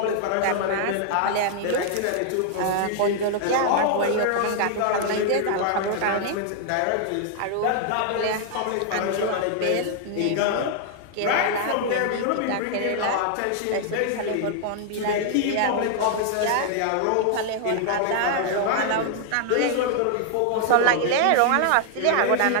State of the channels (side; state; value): both; different; correlation 0.00